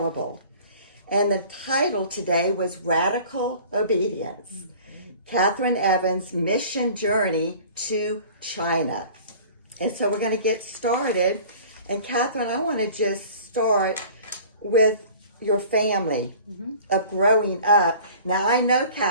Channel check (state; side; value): inverted; both; correlation -0.46